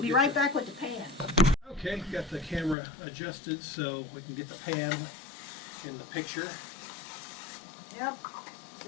be right back with the pan. Okay, got the camera adjusted so we can get the pan in the picture. Yep.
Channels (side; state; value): right; drops out; at 2.8 s